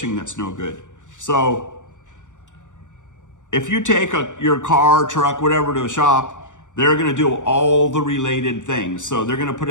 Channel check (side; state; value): right; late; 0.86 ms